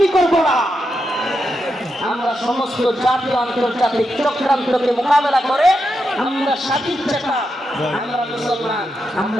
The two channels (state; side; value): normal; both; correlation 0.85